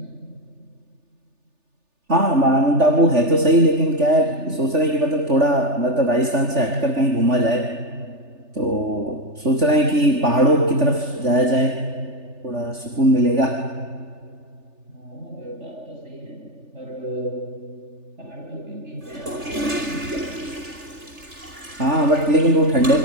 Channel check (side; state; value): left; late; 3.4 ms